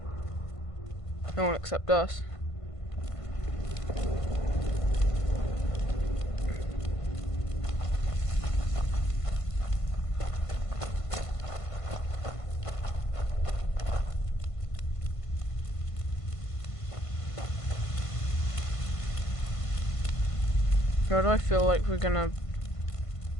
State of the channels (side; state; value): right; late; 1.5 ms